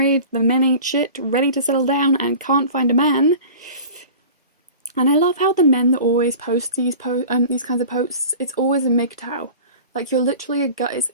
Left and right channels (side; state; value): both; inverted; correlation -0.39